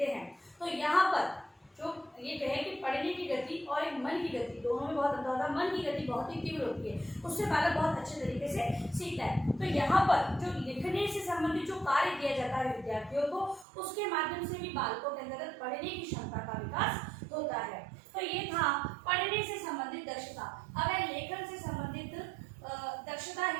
हैं। तो यहाँ पर जो ये कहे कि पढ़ने की गति और एक मन मन की गति, दोनों में बहुत अंतर होता है। मन की गति बहुत ही तीव्र होती है, उससे बालक बहुत अच्छे तरीके से सीखता है। तो यहाँ पर जो लिखने से संबंधित जो कार्य किया जाता है विद्यार्थियों को, उसके माध्यम से भी बालकों के अंतर्गत पढ़ने की क्षमता का विकास होता है। तो ये था पढ़ने से संबंधित दक्षता। अब है लेखन से संबंधित दक्षता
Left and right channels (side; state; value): left; drops out; at 13.7 s